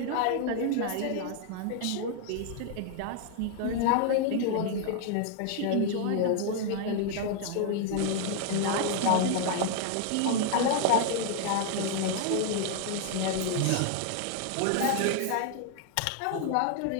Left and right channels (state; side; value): different; both; correlation 0.00